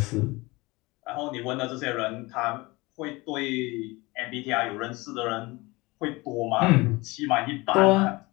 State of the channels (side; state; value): right; quieter; 23.0 dB